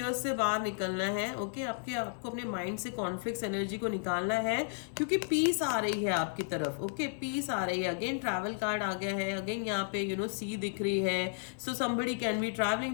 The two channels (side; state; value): right; silent; 56 dB below the other